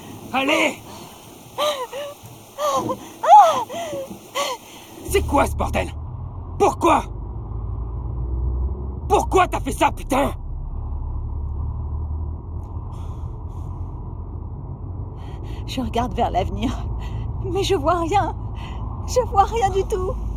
Allez! C'est quoi ce bordel? Pourquoi? Pourquoi t'as fait ça, putain? Je regarde vers l'avenir, mais je vois rien. Je vois rien du tout.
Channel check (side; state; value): both; identical; correlation 1.00